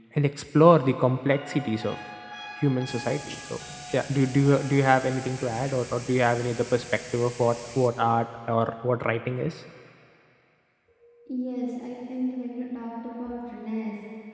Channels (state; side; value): identical; both; correlation 1.00